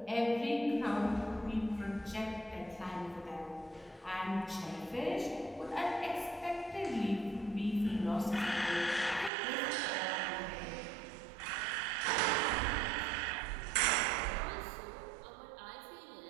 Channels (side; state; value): left; drops out; at 9.3 s